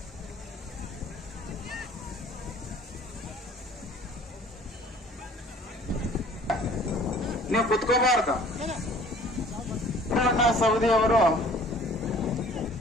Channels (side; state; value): both; normal; correlation 0.52